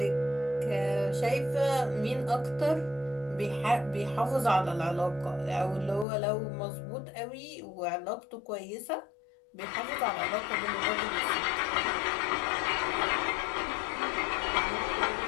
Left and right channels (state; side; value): drops out; right; at 6.1 s